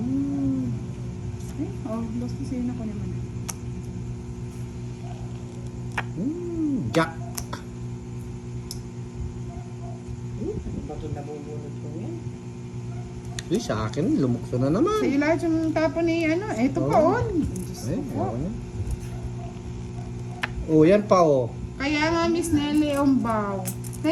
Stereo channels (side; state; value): both; identical; correlation 1.00